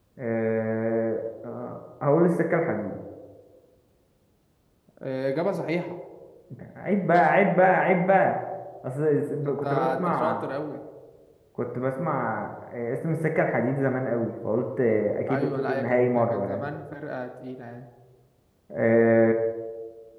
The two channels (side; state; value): both; identical; correlation 1.00